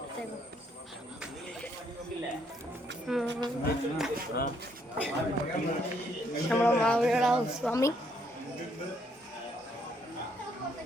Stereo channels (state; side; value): normal; both; correlation 0.70